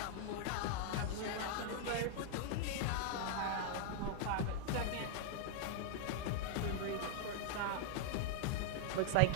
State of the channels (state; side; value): different; both; correlation 0.00